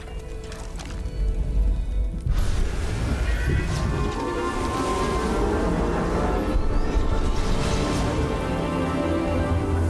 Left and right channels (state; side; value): identical; both; correlation 1.00